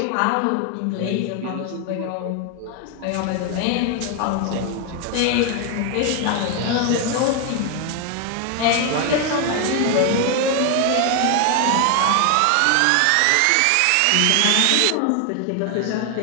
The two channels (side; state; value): both; different; correlation 0.01